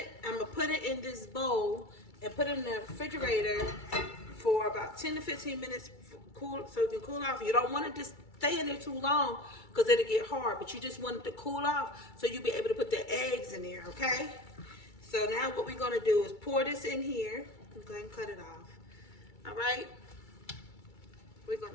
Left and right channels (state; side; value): late; right; 2.3 ms